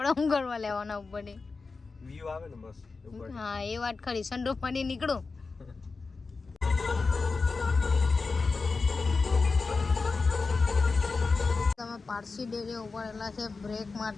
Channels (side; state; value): right; quieter; 4.2 dB